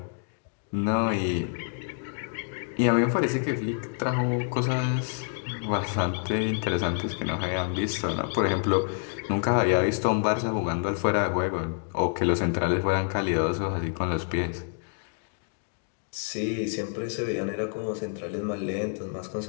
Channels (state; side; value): silent; right; 59 dB below the other